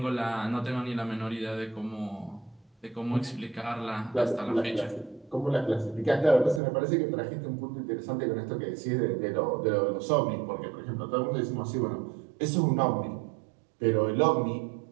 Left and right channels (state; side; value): drops out; left; at 6.6 s